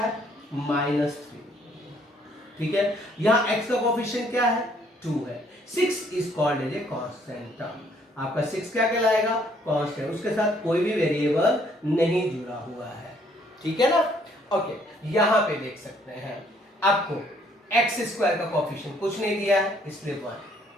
-3, ठीक है। यहाँ एक्स का कोफिशिएंट क्या है, 2 है। 6 is called as a constant term. आपका 6 क्या कहलाएगा, कांस्टेंट, उसके साथ कोई भी वेरिएबल नहीं जुड़ा हुआ है, ठीक है ना। ओके, यहाँ पे देख सकते हैं आपको एक्स स्क्वायर का कोफिशिएंट कुछ नहीं दिया है, इसलिए 1,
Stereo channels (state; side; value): normal; both; correlation 0.65